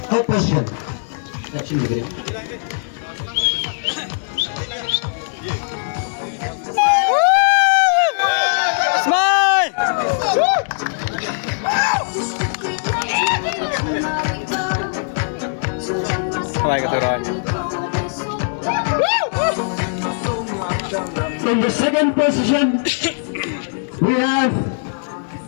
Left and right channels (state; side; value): silent; right; digital silence